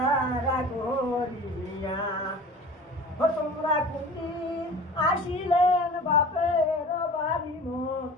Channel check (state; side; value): normal; both; correlation 0.41